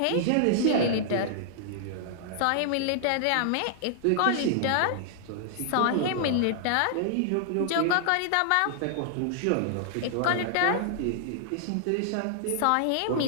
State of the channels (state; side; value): different; both; correlation -0.01